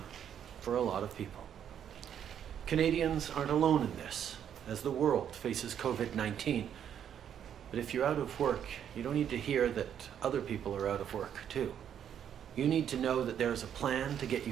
for a lot of people. Canadians aren't alone in this, as the world faces COVID-19. But if you're out of work, you don't need to hear that other people are out of work too. You need to know that there's a plan to get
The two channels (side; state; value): left; quieter; 9.2 dB